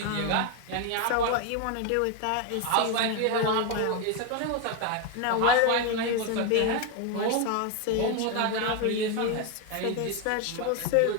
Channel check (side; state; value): both; different; correlation 0.01